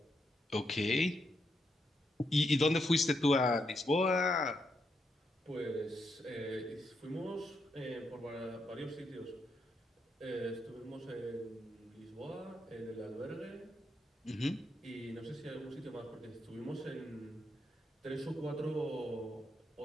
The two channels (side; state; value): both; normal; correlation 0.80